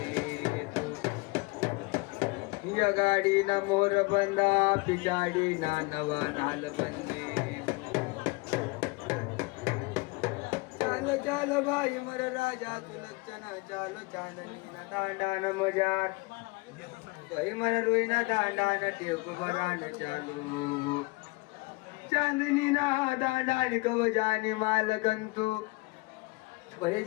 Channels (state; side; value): quieter; right; 25.4 dB